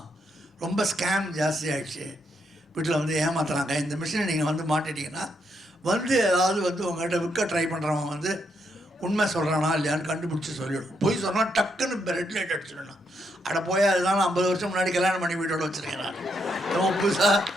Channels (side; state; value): both; normal; correlation 0.78